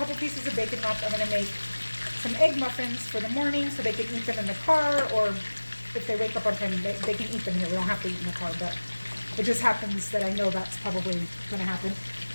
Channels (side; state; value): both; inverted; correlation -1.00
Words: pieces of bacon left. I'm going to make some egg muffins for the morning so they can eat them in the car, or if they wake up on time, they can eat them here. We don't have to eat in the car, but it just happens that I know that's probably going to happen.